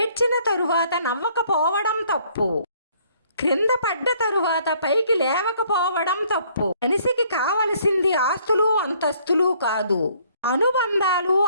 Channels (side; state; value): both; inverted; correlation -0.62